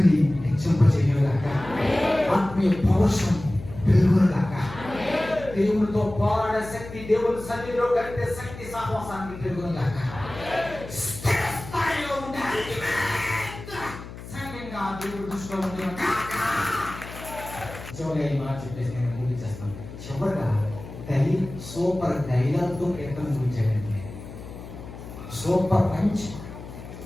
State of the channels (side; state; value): left; noise; hum, 13 dB below the sound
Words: హెచ్చింపజేయగాక, ఆత్మీయ పౌరుషం పెరుగుగాక, దేవునితో పోరాడే శక్తి, దేవుని సన్నిధిలో గడిపే శక్తి సహవాసానికి పెరుగుగాక. స్థిరస్థాయిలో ఉండే సంఘంగా దేవుడు దృష్టిలో ఉండే చివరిగా ఈ మాట చెప్పేసి నేను ముగించేస్తాను. చివరిగా సూపర్ డైలాగ్తో కీర్తన ముగించాడండి. సూపర్ పంచ్